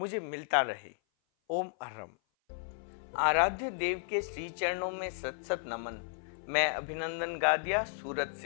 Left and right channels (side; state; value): right; silent; 55 dB below the other